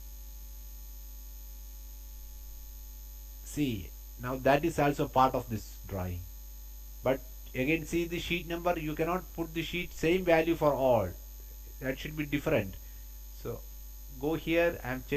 see, now that is also part of this drawing. But again, see the sheet number, you cannot put the sheet same value for all, that should be different. So go here, I am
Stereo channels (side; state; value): both; identical; correlation 1.00